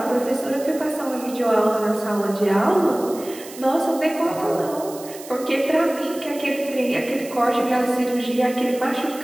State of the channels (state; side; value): noise; right; hiss, 16 dB below the sound